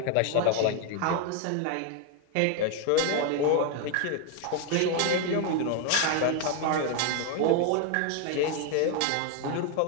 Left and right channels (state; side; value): different; both; correlation 0.01